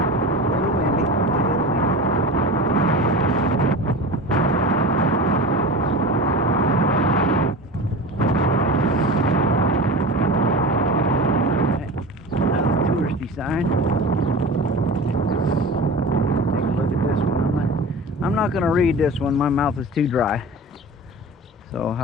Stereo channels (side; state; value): both; normal; correlation 0.32